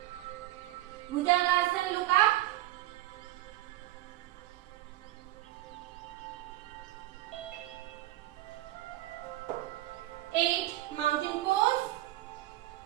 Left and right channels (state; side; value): quieter; left; 16.1 dB